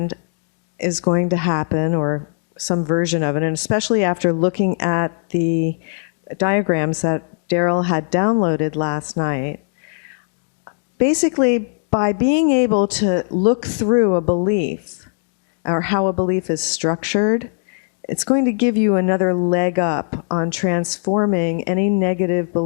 is going to happen, or some version of it, and especially after looking at the diagrams that Daryl had downloaded last night, basically, by being able to look through a belief or how a belief is structured, it's going to give you another leg up on transforming any negative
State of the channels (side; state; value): right; silent; 63 dB below the other